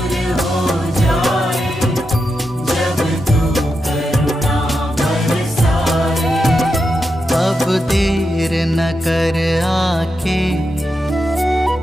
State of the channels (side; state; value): both; normal; correlation 0.87